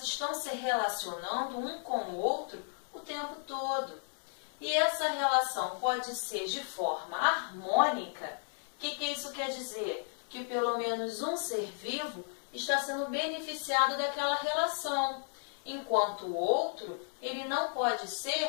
estão se relacionando um com o outro o tempo todo. E essa relação pode ser de forma harmônica. O que isso quer dizer? Que pelo menos um ser vivo está sendo beneficiado daquela relação, enquanto o outro, ele não pode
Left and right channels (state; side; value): silent; right; 55 dB below the other